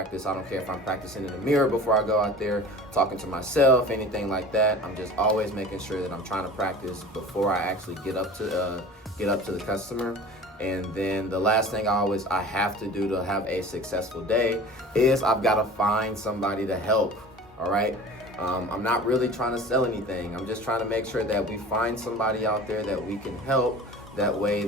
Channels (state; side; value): normal; both; correlation 0.40